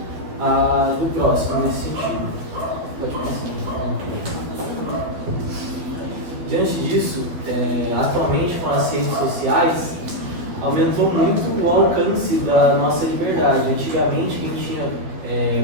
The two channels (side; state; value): left; late; 12 ms